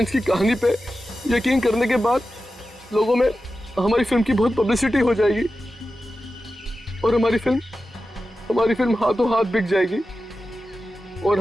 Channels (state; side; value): normal; both; correlation 0.93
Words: की कहानी पे यकीन करने के बाद लोगों में हमारी फिल्म की बहुत पब्लिसिटी हो जाएगी और हमारी फिल्म हाथों हाथ बिक जाएगी और